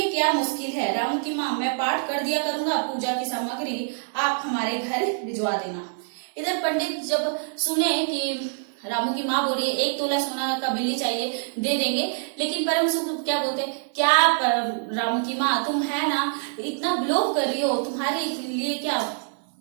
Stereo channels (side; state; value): left; silent; 62 dB below the other